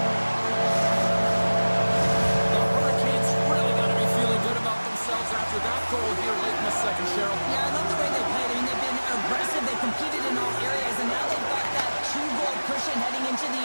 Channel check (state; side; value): inverted; both; correlation -1.00